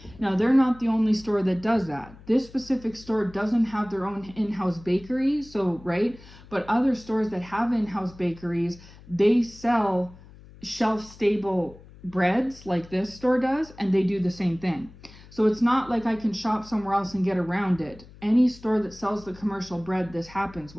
Now, they're not the only store that does that. This specific store doesn't have their own in-house bakery, so, right? But other stores that have in-house bakeries, they sell shelf-stable breads like this store does, and they do the same thing. So it's not like I can shop somewhere else and get around it. Any store that sells the commercial bread, this happens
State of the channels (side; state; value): left; noise; hum, 21 dB below the sound